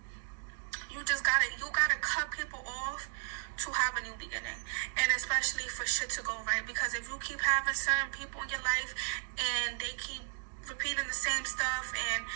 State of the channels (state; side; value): silent; left; digital silence